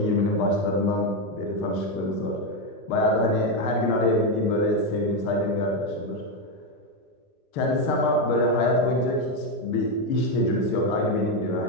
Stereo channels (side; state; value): right; late; 6.6 ms